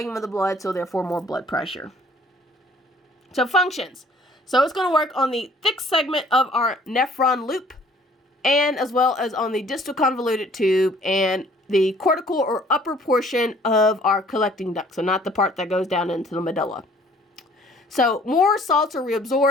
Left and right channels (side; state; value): both; normal; correlation 0.56